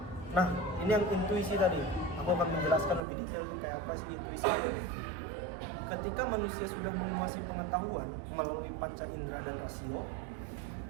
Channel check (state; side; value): drops out; left; at 3.1 s